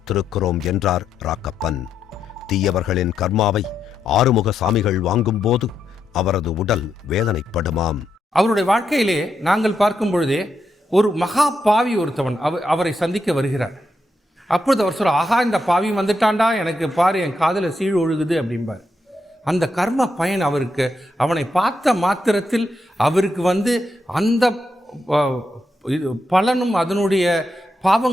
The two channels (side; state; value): both; normal; correlation 0.82